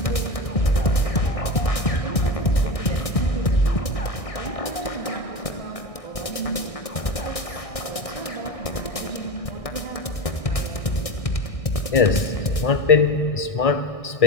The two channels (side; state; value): right; late; 1.6 ms